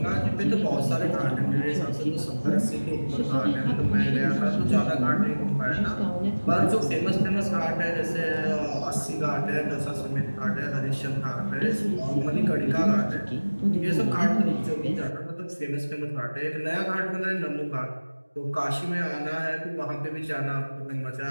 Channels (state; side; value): inverted; both; correlation -1.00